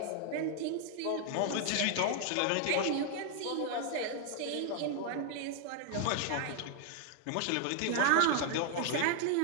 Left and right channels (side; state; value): both; different; correlation 0.00